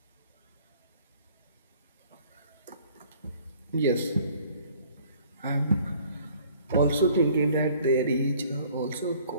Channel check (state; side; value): inverted; both; correlation -0.56